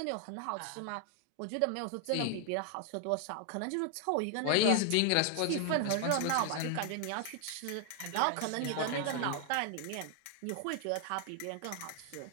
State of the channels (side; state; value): both; different; correlation 0.00